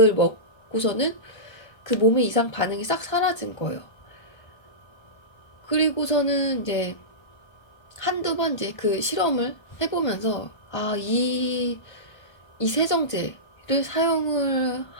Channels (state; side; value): late; right; 1.3 ms